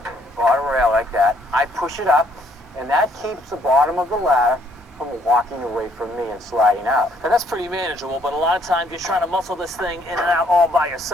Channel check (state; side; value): normal; both; correlation 0.66